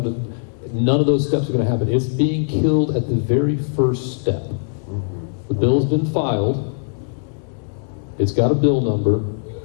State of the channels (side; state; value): right; silent; digital silence